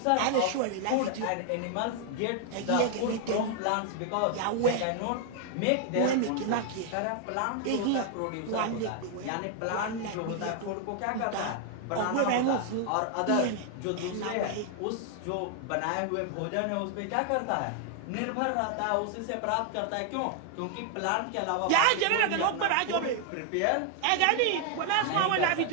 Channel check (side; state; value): both; different; correlation 0.00